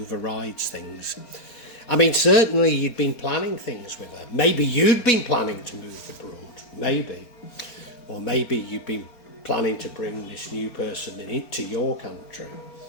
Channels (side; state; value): right; late; 4.4 ms